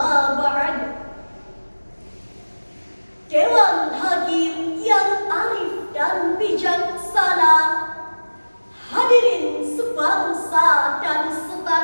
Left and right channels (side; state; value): both; inverted; correlation -1.00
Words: ba'd. Dewan Hakim yang arif dan bijaksana, hadirin sebangsa dan